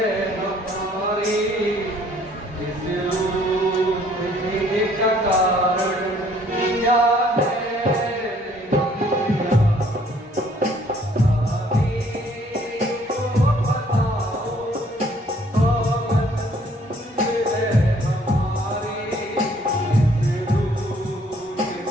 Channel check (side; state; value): both; normal; correlation 0.61